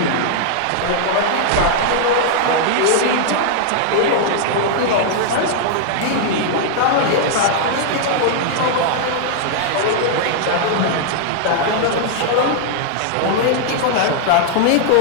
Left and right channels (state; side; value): different; both; correlation -0.01